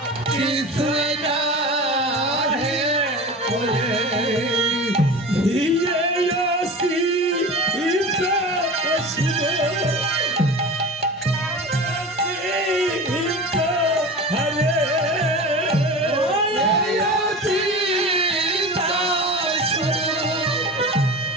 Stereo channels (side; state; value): both; normal; correlation 0.32